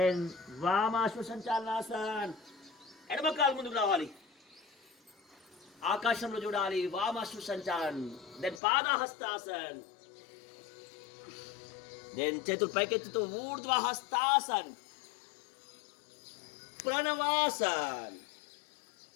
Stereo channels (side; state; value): right; drops out; at 8.6 s